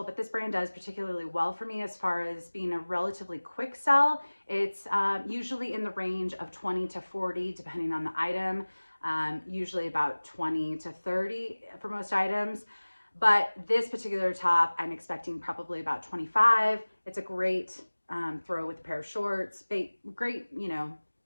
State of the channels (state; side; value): inverted; both; correlation -1.00